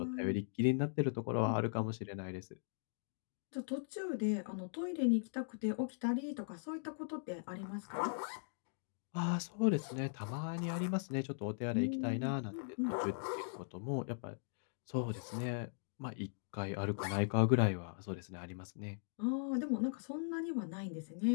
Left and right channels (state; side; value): silent; right; digital silence